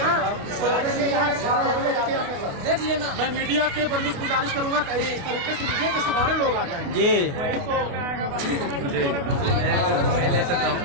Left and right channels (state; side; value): late; left; 28 ms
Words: देख लेना, मैं मीडिया के बंदों से गुजारिश करूंगा कि इस तरीके से मीडिया के सारे लोग आ जाएं। जी